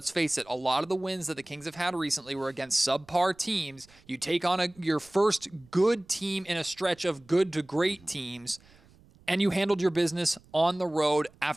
face it, a lot of the wins that the Kings have had recently were against subpar teams. You take on your first good team in a stretch of good to great teams, and you handled your business on the road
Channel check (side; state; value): right; noise; rumble, 28 dB below the sound